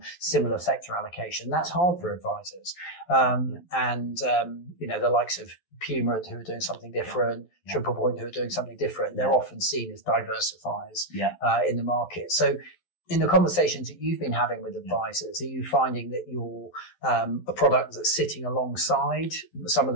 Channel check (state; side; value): late; right; 11 ms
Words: similar sector allocation. That's hard for advisors. The likes of Puma, who are doing something different, Triple Point, who are doing something different, they're often seen as diversifiers in the market. So in the conversations that you've been having with advisors, are you finding that you're a product that's sitting alongside some of